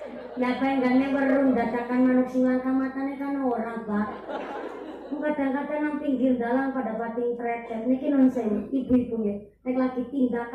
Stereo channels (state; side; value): identical; both; correlation 1.00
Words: Ya pengen berung dadakan manuk sing langka matane kan orang, Pak. Kadang-kadang nang pinggir dalan pada bating tretet niki non sewu ibu-ibu ya nek lagi